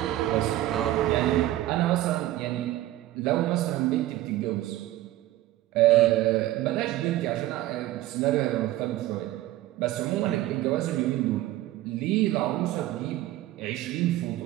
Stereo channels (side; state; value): left; quieter; 15.3 dB